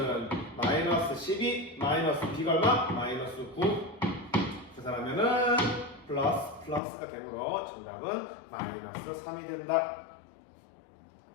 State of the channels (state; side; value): drops out; right; at 6.8 s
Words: 마이너스 12 마이너스 b가 얼마? 마이너스 9. 계산하면은 플러스가 되므로 정답은 마이너스 3이 된다.